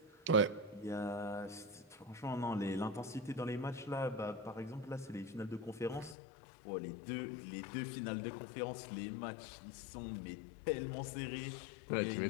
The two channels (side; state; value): right; drops out; at 6.2 s